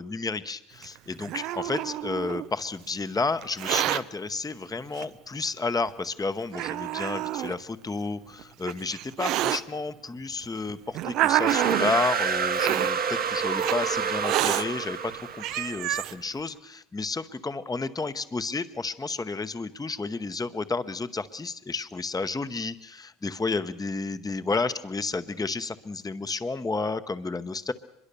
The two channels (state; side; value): normal; both; correlation 0.46